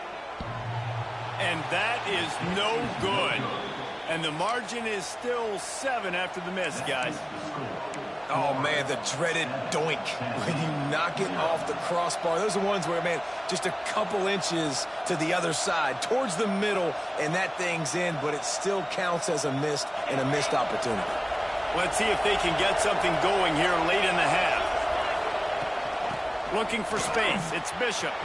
And that is no good. And the margin is still 7 after the miss, guys. Oh, man, the dreaded doink when you knock it off the crossbar. Those are ones where, man, just a couple inches to the other side, towards the middle, and that thing's in, but it still counts as a missed opportunity. Let's see if they can get something going here late in the half. Looking for space. It's Bishop.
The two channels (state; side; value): identical; both; correlation 1.00